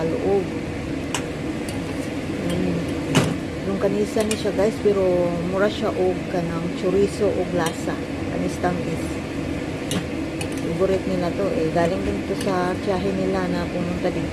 loob. Longganisa ni siya guys, pero mura siya og kanang chorizo og lasa. Kanis tamis. Favorite nila to eh. Galing din to sa tiyahe nila na pumunta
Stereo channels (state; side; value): identical; both; correlation 1.00